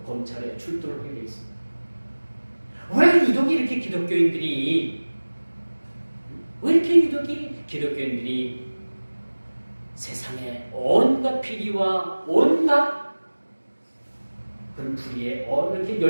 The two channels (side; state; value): both; inverted; correlation -1.00